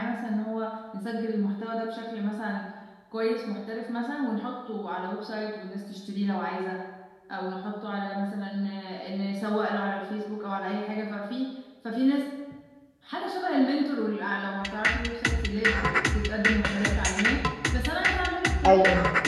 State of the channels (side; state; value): both; identical; correlation 1.00